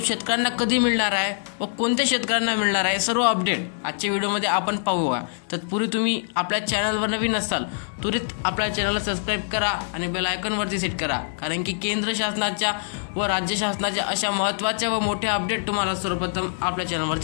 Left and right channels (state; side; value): silent; right; digital silence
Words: कधी मिळणार आहे व कोणत्या शेतकऱ्यांना मिळणार आहे, सर्व अपडेट आजच्या व्हिडिओमध्ये आपण पाहूया। तत्पूर्वी तुम्ही आपल्या चॅनलवर नवीन असाल त्वरित आपल्या चॅनलला सबस्क्राइब करा आणि बेल आयकॉनवरती सेट करा, कारण की केंद्र शासनाच्या व राज्य शासनाच्या अशा महत्त्वाच्या व मोठ्या अपडेट तुम्हाला सर्वप्रथम आपल्या